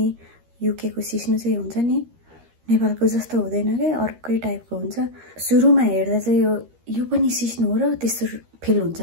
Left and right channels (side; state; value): left; late; 13 ms